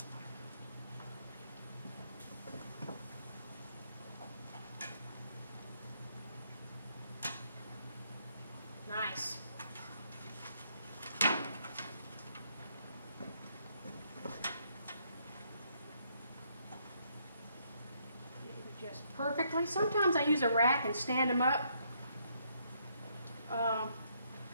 Nice. Just perfectly. Sometimes I use a rack and stand them up.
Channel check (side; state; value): both; inverted; correlation -0.72